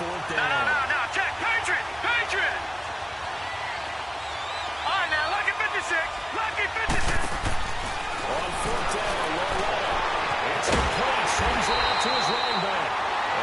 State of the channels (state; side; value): identical; both; correlation 1.00